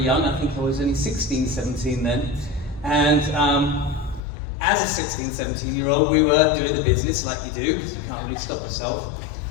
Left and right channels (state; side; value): drops out; right; at 4.2 s